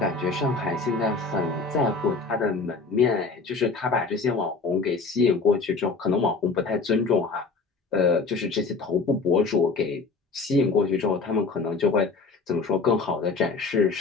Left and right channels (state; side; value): quieter; right; 4.2 dB